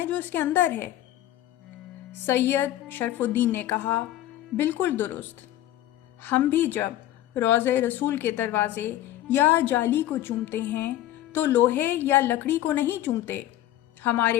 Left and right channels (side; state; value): right; quieter; 13.6 dB